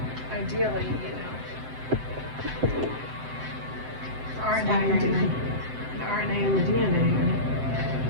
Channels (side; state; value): left; late; 7.8 ms